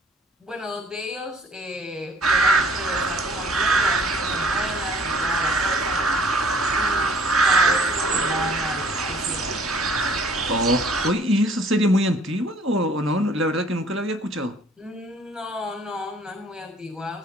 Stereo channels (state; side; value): normal; both; correlation 0.55